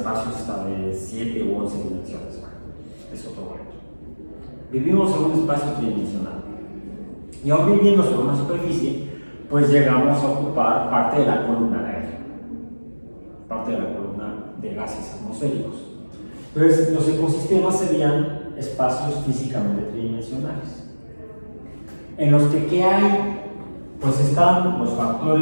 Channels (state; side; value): inverted; both; correlation -1.00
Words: hasta de 7 u 11 dimensiones. Es otro cuento. Vivimos en un espacio tridimensional. Y aún viviendo sobre una superficie, pues llegamos a ocupar parte de la columna de aire. atmosféricos. Entonces, los ecosistemas serían espacios físicamente tridimensionales, en los que ¿qué hay? Pues están los